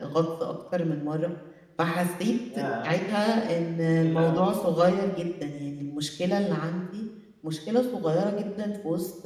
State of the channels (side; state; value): both; identical; correlation 1.00